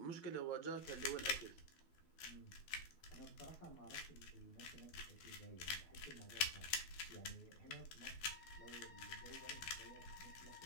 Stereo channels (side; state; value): right; late; 12 ms